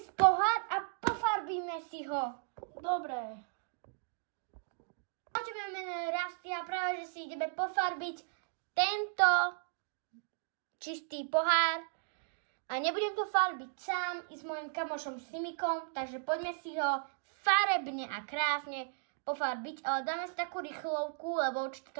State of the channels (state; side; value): silent; left; digital silence